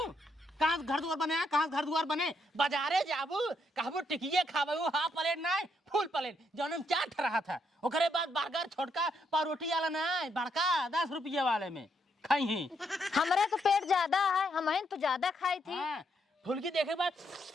कहां घर दुआर बने, कहां घर दुआर बने, बाजारे जाबू कहबू टिकिए खाबू, हाफ प्लेट ना फुल प्लेट जौन चाट रहा था। ओकरे बाद बर्गर छोटका पारोटी वाला ना बड़का 10 रुपये वाले में खाई ही। हमरे तो पेट ज्यादा है, हमहन तो ज्यादा खाई थी। फुलकी देखे बाद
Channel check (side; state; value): both; normal; correlation 0.76